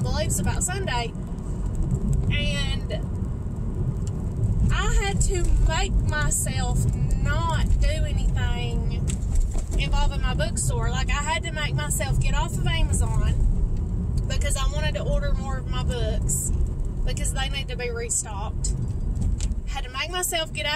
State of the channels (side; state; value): both; identical; correlation 1.00